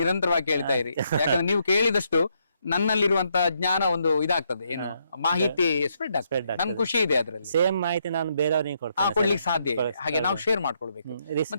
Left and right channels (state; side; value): inverted; both; correlation -0.76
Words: ಕೇಳ್ತಾ ಇರಿ. ಯಾಕಂದ್ರೆ ನೀವು ಕೇಳಿದಷ್ಟು ನನ್ನಲ್ಲಿರುವಂತ ಜ್ಞಾನ ಒಂದು ಇದಾಗ್ತದೆ, ಏನು ಮಾಹಿತಿ ಸ್ಪ್ರೆಡ್ ಆಗ್ತದೆ. ನನ್ ಖುಷಿ ಇದೆ ಅದ್ರಲ್ಲಿ. ಸೇಮ್ ಮಾಹಿತಿ ನಾನು ಬೇರೆಯವ್ರಿಗೆ ಕೊಡ್ಲಿಕ್ಕೆ ಸಾಧ್ಯ ಇದೆ. ಹಾಗೆ ನಾವು ಶೇರ್ ಮಾಡ್ಕೊಳ್ಬೇಕು.